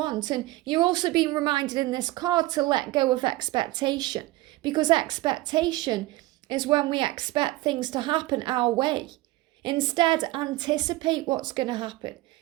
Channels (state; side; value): quieter; left; 18.7 dB